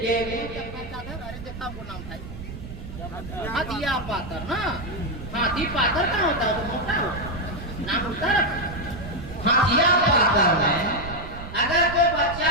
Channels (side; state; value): right; noise; rumble, 11 dB below the sound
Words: कि हाथिया पातर ना हाथी पातर कहाँ होता है तो मोटा हो नाम होता है हाथिया पातर में अगर कोई बच्चा